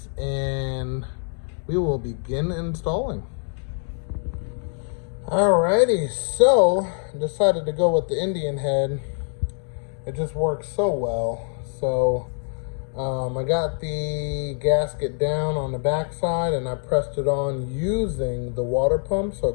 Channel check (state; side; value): silent; right; 56 dB below the other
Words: and we will begin installing. Alrighty, so decided to go with the Indian head. It just works so well. So I got the gasket down on the back side and I pressed it on using the water pump so